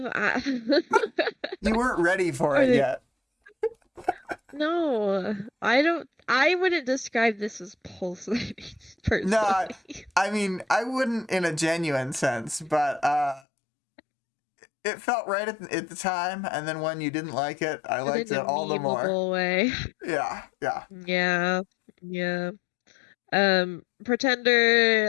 you weren't ready for Are it they? yet. No, I don't. I wouldn't describe this as pulsating No, personally. I mean I wouldn't in a genuine sense, but it felt right at the time, and then when you didn't like it, I But liked in a it all the more. memeable way. Yeah, yeah. Yeah, yeah.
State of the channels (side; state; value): right; drops out; at 13.4 s